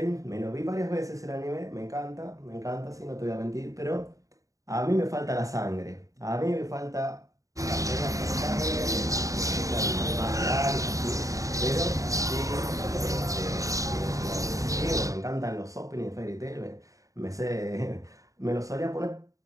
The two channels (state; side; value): late; left; 0.16 ms